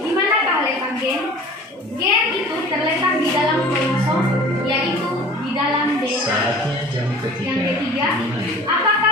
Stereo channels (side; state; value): both; normal; correlation 0.44